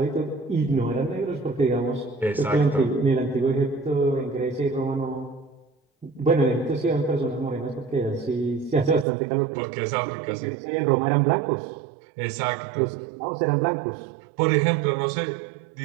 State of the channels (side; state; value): left; drops out; at 9.1 s